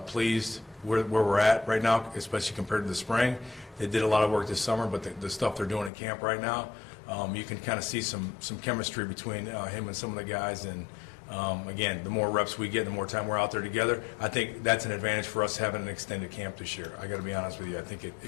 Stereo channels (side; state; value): right; drops out; at 5.9 s